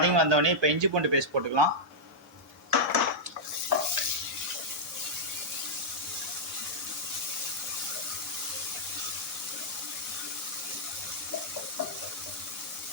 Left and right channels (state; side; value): normal; both; correlation -0.06